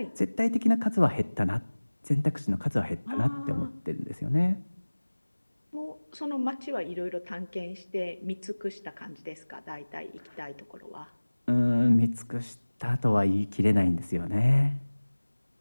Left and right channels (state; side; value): inverted; both; correlation -1.00